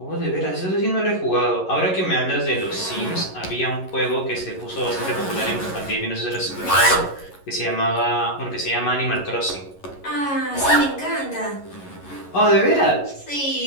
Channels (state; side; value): late; right; 11 ms